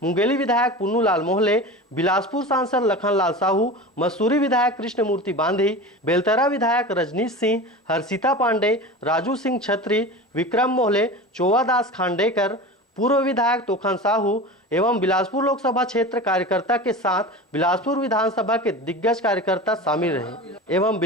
मुंगेली विधायक पुन्नू लाल मोहले, बिलासपुर सांसद लखन लाल साहू, मसूरी विधायक कृष्णमूर्ति बांधी, बेलतरा विधायक रजनीश सिंह, हर्षिता पांडे, राजू सिंह छत्री, विक्रम मोहले, चोवादास खांडेकर, पूर्व विधायक तोखन साहू एवं बिलासपुर लोकसभा क्षेत्र कार्यकर्ता के साथ बिलासपुर विधानसभा के दिग्गज कार्यकर्ता शामिल रहे एवं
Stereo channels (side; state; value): both; normal; correlation 0.31